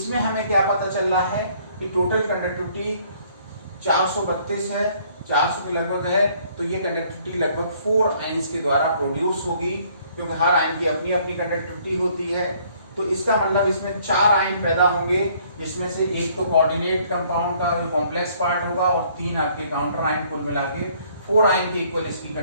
हमें क्या पता चल रहा है कि टोटल कंडक्टिविटी 432 है, 400 के लगभग है, तो ये कंडक्टिविटी लगभग 4 आयंस के द्वारा प्रोड्यूस होगी, क्योंकि हर आयन की अपनी अपनी कंडक्टिविटी होती है। तो इसका मतलब इसमें 4 आयन पैदा होंगे, जिसमें से एक तो कोऑर्डिनेट कंपाउंड का जो कॉम्प्लेक्स पार्ट होगा और 3 आपके काउंटर आयन, कुल मिला के 4 आयन के इक्वल इसकी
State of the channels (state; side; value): inverted; both; correlation -0.62